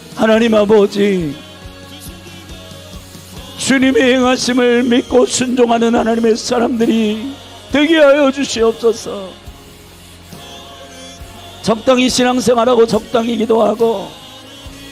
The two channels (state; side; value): identical; both; correlation 1.00